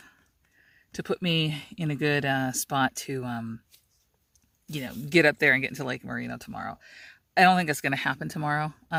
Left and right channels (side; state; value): both; identical; correlation 1.00